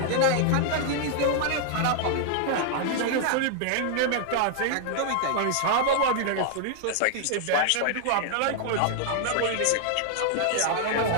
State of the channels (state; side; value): different; both; correlation -0.01